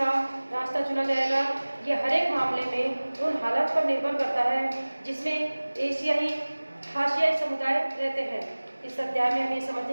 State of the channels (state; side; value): inverted; both; correlation -1.00